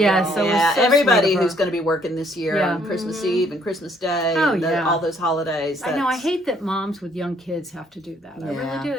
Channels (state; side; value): normal; both; correlation 0.65